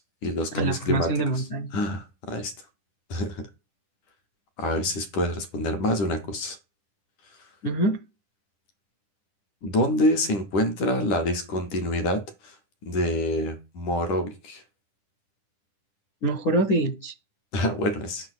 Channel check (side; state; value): right; late; 10 ms